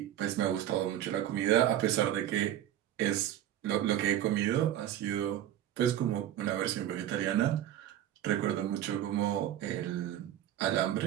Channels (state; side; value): quieter; left; 11.8 dB